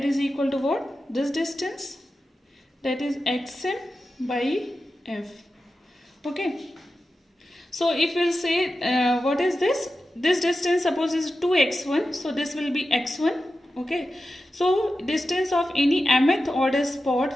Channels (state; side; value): normal; both; correlation 0.92